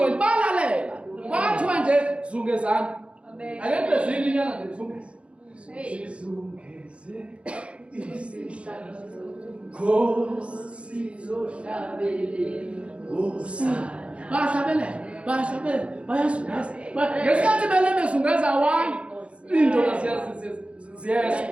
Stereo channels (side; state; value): left; late; 0.060 ms